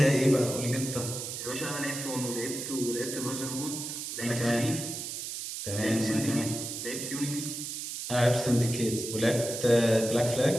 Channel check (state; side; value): noise; right; hiss, 6 dB below the sound